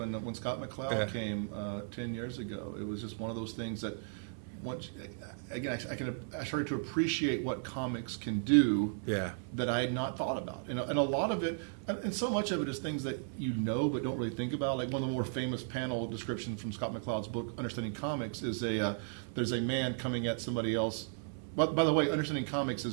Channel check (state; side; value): silent; left; 54 dB below the other